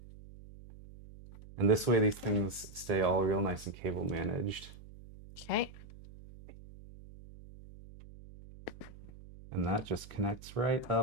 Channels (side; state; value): right; noise; hum, 18 dB below the sound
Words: And this way, these things stay all real nice and cable managed. Okay. And that just connects right